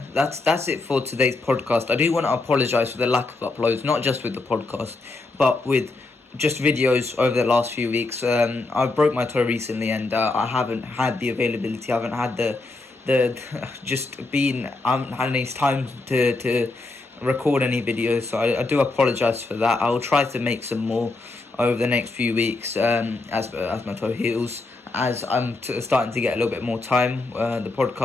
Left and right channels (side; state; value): right; quieter; 3.3 dB